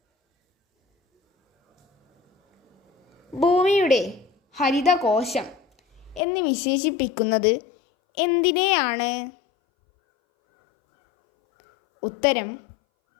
ഭൂമിയുടെ ഹരിതകോശം എന്ന് വിശേഷിപ്പിക്കുന്നത് എന്തിനെയാണ്? ഉത്തരം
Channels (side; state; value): right; drops out; at 6.2 s